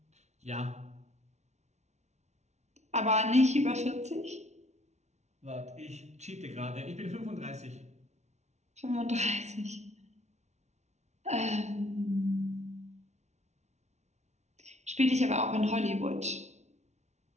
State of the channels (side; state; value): left; late; 0.32 ms